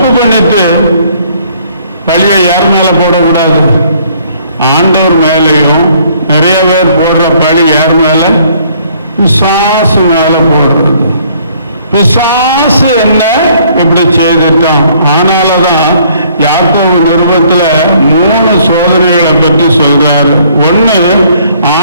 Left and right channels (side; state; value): both; inverted; correlation -0.62